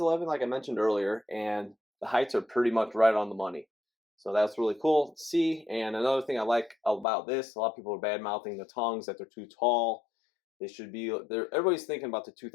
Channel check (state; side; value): drops out; right; at 7.1 s